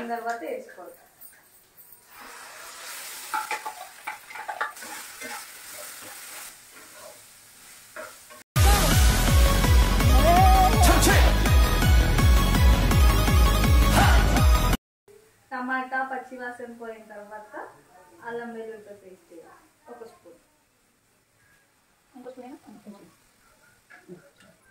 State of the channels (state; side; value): identical; both; correlation 1.00